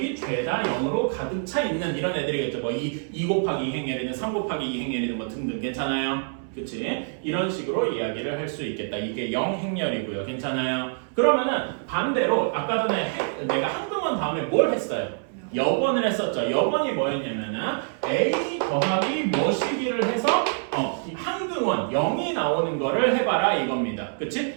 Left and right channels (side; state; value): left; silent; 61 dB below the other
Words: 죄다 0으로 가득 차 있는 이런 애들이겠죠. 뭐 2 곱하기 2 행렬이든 3 곱하기 2 행렬이든 뭐 등등. 괜찮아요? 그치? 이런 식으로 이야기를 할 수 있겠다. 이게 영행렬이고요. 괜찮아요? 그러면은 반대로 아까 전에 내가 항등원 다음에 뭘 했어요? 역원을 했었죠. 역원이 뭐였냐면은 A 더하기 뭐시기를 해서 항등원 0이 나오는 거를 해봐라 이겁니다.